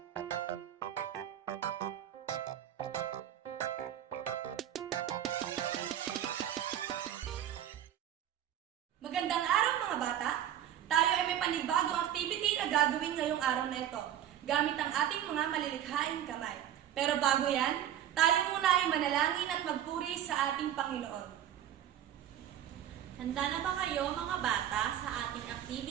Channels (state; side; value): quieter; left; 10.9 dB